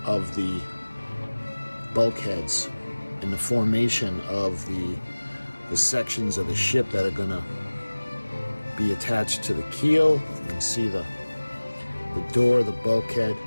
of the bulkheads and the formation of the sections of the ship that are gonna be attached to the keel. You can see the door, the bulkhead.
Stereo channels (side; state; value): both; inverted; correlation -1.00